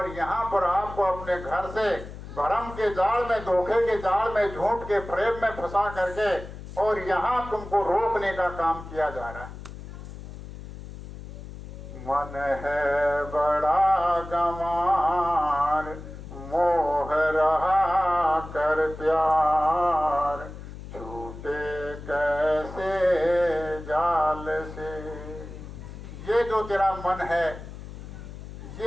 यहाँ पर आपको अपने घर से भ्रम के जाल में, धोखे के जाल में, झूठ के प्रेम में फंसा करके, और यहाँ तुमको रोकने का काम किया जा रहा है। मन है बड़ा गंवार, मोह रहा कर प्यार, छूटे कैसे जाल से। ये जो तेरा मन है,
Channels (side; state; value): left; noise; hum, 12 dB below the sound